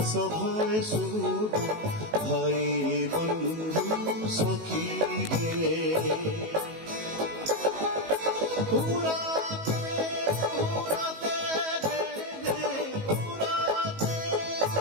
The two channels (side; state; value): left; late; 19 ms